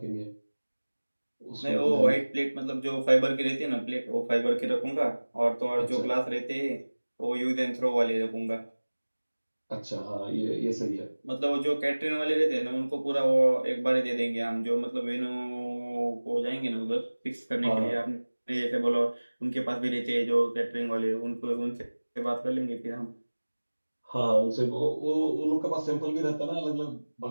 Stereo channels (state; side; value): inverted; both; correlation -1.00